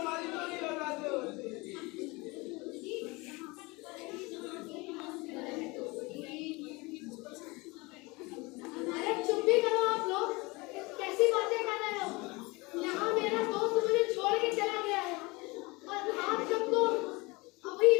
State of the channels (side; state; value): right; quieter; 24.8 dB